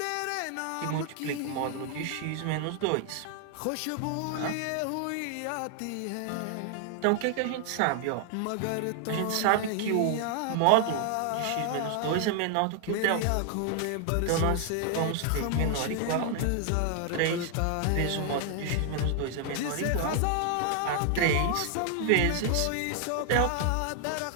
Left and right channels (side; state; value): both; different; correlation 0.00